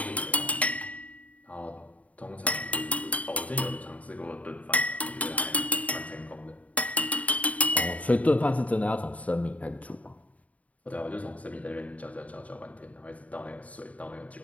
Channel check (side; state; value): right; late; 0.069 ms